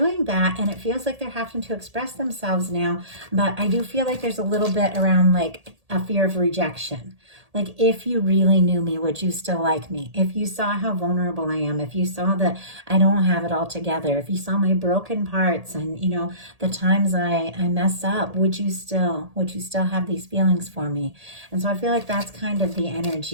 that, and it feels like they're having to express themselves now. But I do feel like there's a little bit around like a fear of rejection. Like, if you really knew me, would you still like me? If you saw how vulnerable I am, if you saw that I don't have it all together, if you saw my broken parts and, you know, the times I mess up, would you still have these feelings for me? And so I feel like that's kind of the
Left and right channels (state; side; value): late; left; 1.8 ms